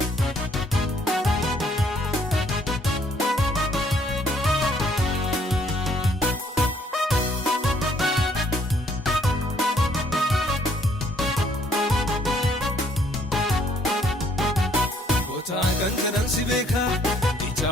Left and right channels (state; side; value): normal; both; correlation 0.64